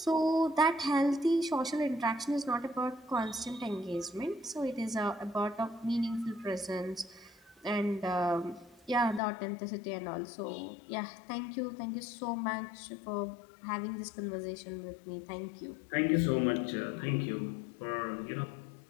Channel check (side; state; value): right; drops out; at 9.2 s